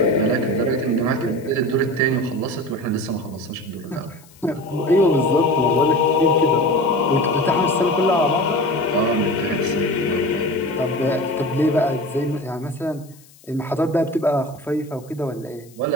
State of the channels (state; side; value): noise; left; hiss, 26 dB below the sound